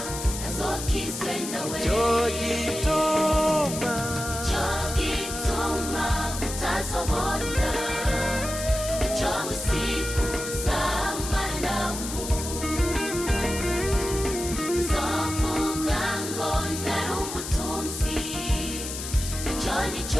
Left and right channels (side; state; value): left; noise; hiss, 7 dB below the sound